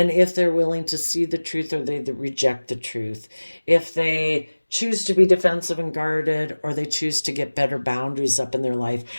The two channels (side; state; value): both; inverted; correlation -1.00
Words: if they're willing to see the truth or they reject the truth, if they choose to be defensive and guarded or they choose to get better boundaries up in their life.